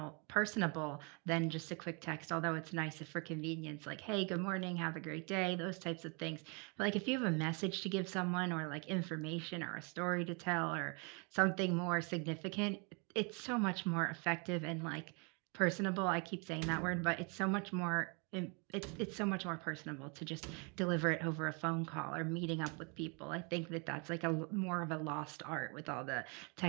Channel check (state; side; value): quieter; left; 33.7 dB